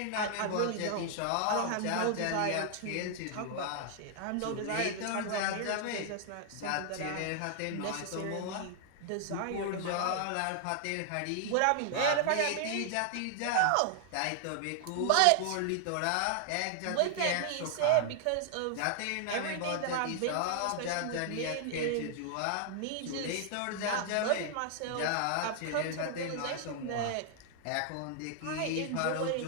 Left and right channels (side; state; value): both; different; correlation 0.00